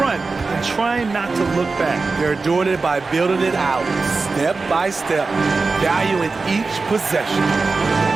and trying not to look back. They're doing it by building it out, step by step, valuing each possession.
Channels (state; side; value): quieter; left; 4.1 dB